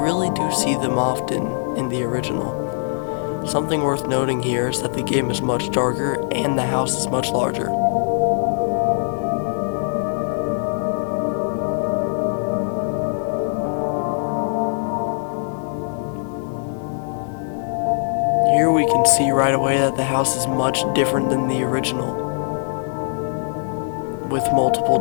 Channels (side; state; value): right; silent; digital silence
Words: really do see them often in the original. Something worth noting here is that the game is much darker and the house is much larger. Here we can see right away that the house is much different than the original, with